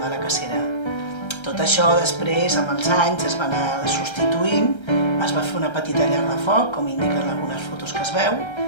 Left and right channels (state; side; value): late; right; 1.3 ms